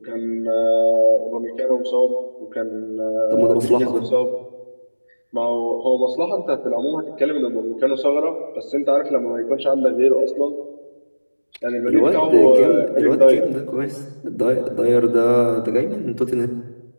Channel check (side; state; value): both; inverted; correlation -1.00